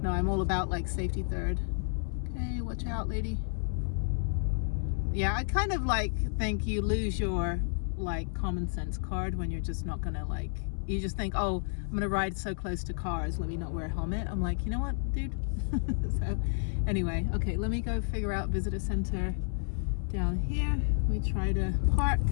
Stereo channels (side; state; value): right; silent; 57 dB below the other